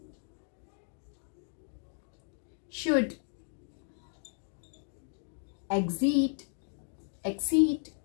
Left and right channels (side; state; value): right; silent; 55 dB below the other